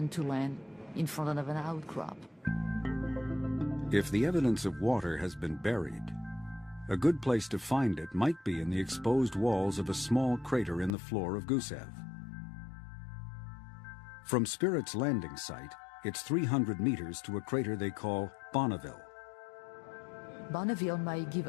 to land in front of an outcrop. If the evidence of water has been buried, a good place to find it might be in the exposed walls of a small crater in the floor of Gusev. From Spirit's landing site, it's 300 meters to a crater they call Bonneville. Bonneville might give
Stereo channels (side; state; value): right; drops out; at 10.9 s